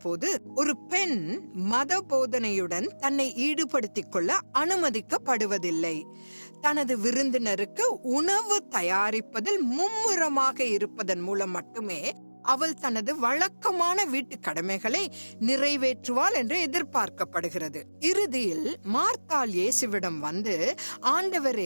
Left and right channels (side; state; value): both; inverted; correlation -1.00